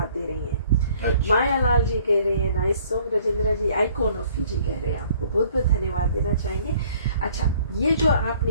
दे रही हैं। माया लाल जी कह रहे हैं nice song, Rajendra ji icon of Fiji कह रहे हैं, आपको बहुत बहुत धन्यवाद देना चाहेंगे। अच्छा, ये जो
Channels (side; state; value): both; inverted; correlation -0.58